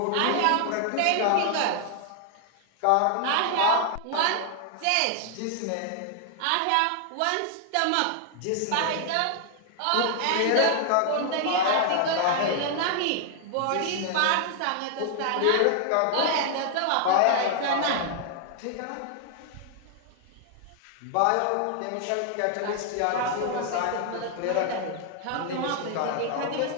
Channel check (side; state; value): both; different; correlation 0.00